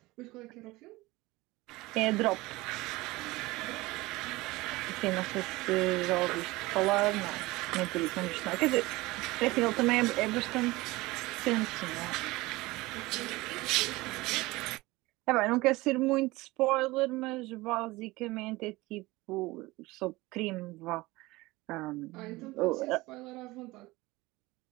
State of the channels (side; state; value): left; quieter; 20.7 dB